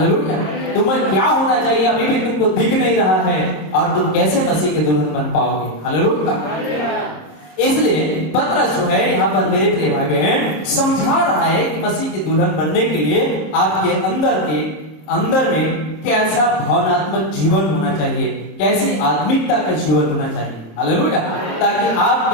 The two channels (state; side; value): late; right; 26 ms